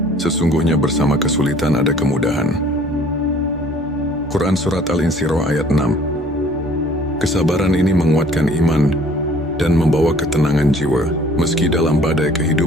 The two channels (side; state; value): both; normal; correlation 0.54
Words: sesungguhnya bersama kesulitan ada kemudahan. Quran Surat Al-Insyirah ayat 6. Kesabaran ini menguatkan iman dan membawa ketenangan jiwa meski dalam badai